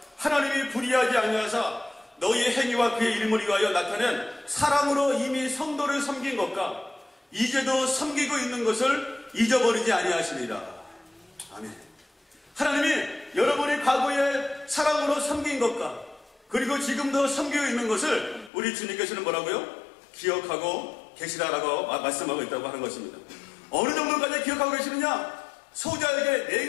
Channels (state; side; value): drops out; right; at 18.5 s